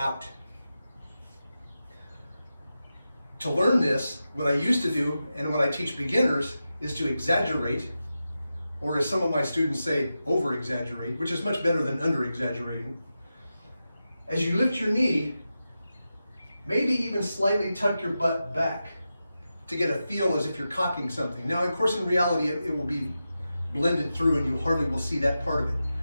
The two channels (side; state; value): both; inverted; correlation -0.91